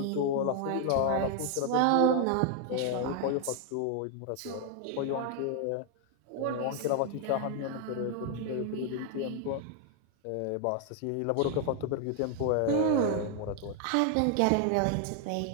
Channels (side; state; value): both; different; correlation 0.00